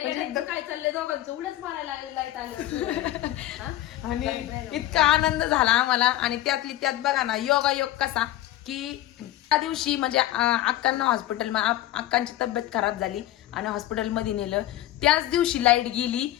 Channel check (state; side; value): quieter; right; 14.6 dB